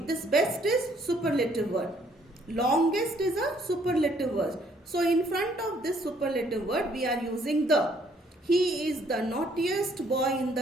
best is superlative word. Longest is a superlative word. So in front of this superlative word, we are using the. He is the naughtiest boy in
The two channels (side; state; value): both; normal; correlation 0.65